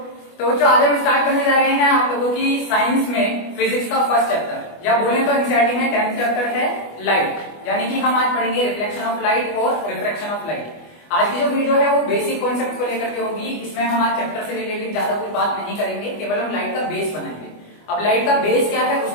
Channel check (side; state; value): right; late; 25 ms